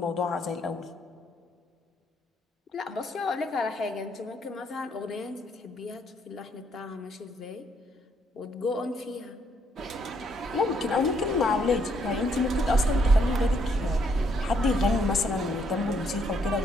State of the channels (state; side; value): normal; both; correlation 0.71